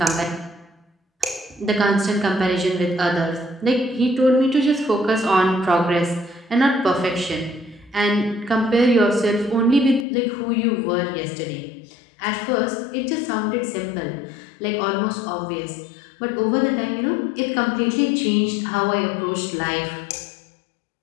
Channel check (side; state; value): right; drops out; at 10.1 s